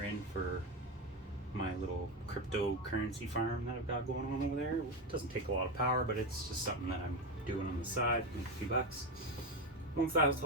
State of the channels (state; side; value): normal; both; correlation 0.15